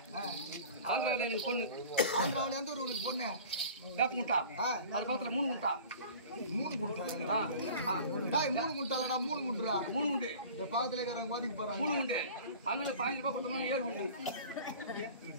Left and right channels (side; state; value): both; inverted; correlation -0.42